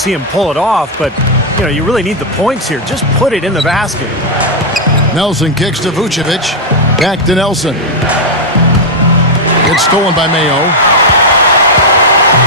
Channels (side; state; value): both; normal; correlation -0.01